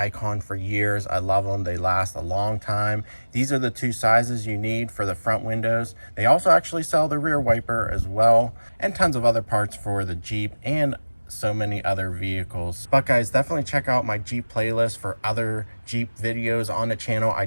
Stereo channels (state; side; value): inverted; both; correlation -1.00